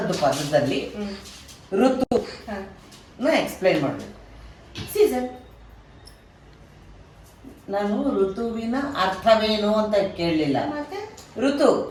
ಪದದಲ್ಲಿ ಋತು ಎಕ್ಸ್ಪ್ಲೈನ್ ಮಾಡಬೇಕು. ಸೀಸನ್. ನಾನು ಋತುವಿನ ಅರ್ಥವೇನು ಅಂತ ಕೇಳಲಿಲ್ಲ. ಮತ್ತೆ ಋತು,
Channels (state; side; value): identical; both; correlation 1.00